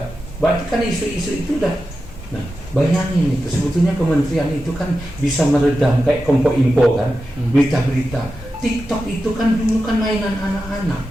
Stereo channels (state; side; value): normal; both; correlation 0.91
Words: Berarti kan isu-isu itu udah. Nah, bayangin itu, sebetulnya kementerian itu kan bisa meredam kayak Kompo-Info kan, berita-berita. TikTok itu kan dulu kan mainan anak-anak.